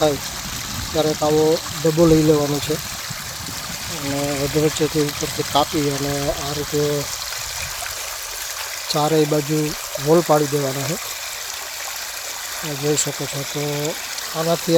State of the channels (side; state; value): both; identical; correlation 1.00